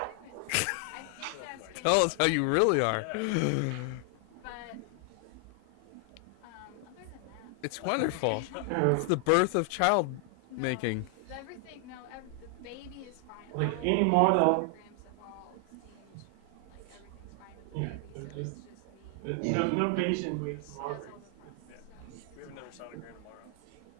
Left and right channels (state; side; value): different; both; correlation 0.00